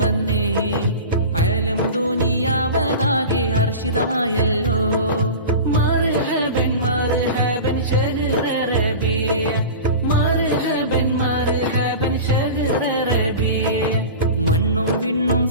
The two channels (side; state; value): both; inverted; correlation -0.33